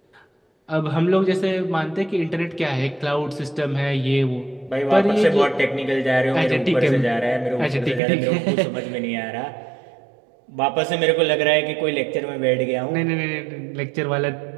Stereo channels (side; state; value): left; drops out; at 8.0 s